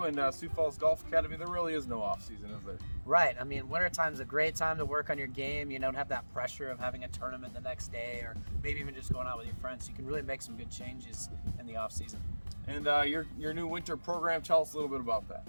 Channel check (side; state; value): both; inverted; correlation -1.00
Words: and Sioux Falls Golf Academy, there really is no off-season, is there? Right. I mean, wintertime's a great time to work on your game. You don't have that pressure of having a tournament the next day or maybe even just going out with your friends. You can really make some good changes in the off-season. And your new winter program, tell us a little bit about that.